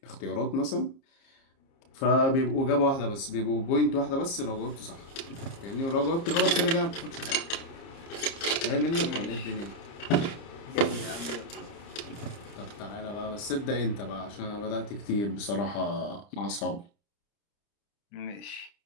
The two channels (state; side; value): late; right; 30 ms